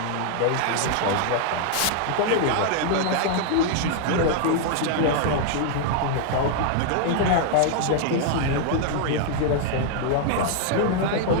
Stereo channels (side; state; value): both; different; correlation 0.00